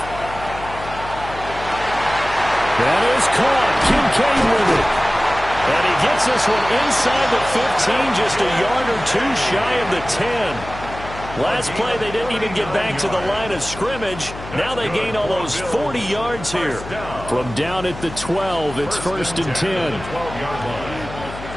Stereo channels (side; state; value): left; noise; hum, 12 dB below the sound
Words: That is caught. Kincaid with it. And he gets this one inside the 15, just a yard or 2 shy of the 10. Last play, they didn't even get back to the line of scrimmage. Now they gain almost 40 yards here. From down at the 12, it's 1st and 10.